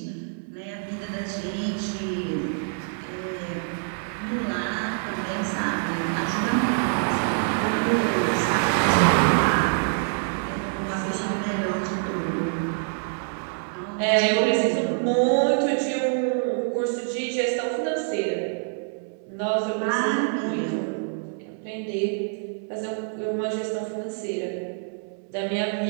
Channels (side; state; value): left; silent; 61 dB below the other